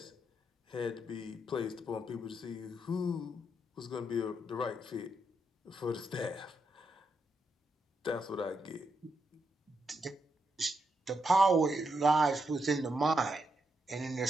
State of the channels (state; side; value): normal; both; correlation 0.82